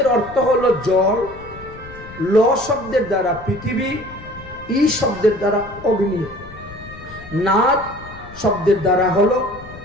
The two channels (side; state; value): left; noise; rumble, 17 dB below the sound